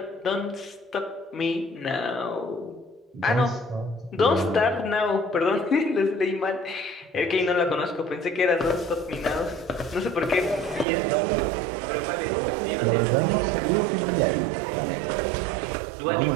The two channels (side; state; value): left; drops out; at 10.9 s